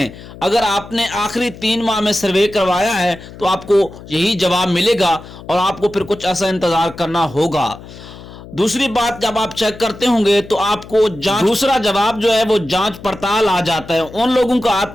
अगर आपने आखिरी 3 माह में सर्वे करवाया है तो आपको यही जवाब मिलेगा और आपको फिर कुछ ऐसा इंतजार करना होगा। दूसरी बात, जब आप चेक करते होंगे तो आपको दूसरा जवाब जो है वो जांच पड़ताल आ जाता है। उन लोगों का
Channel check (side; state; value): left; noise; hum, 17 dB below the sound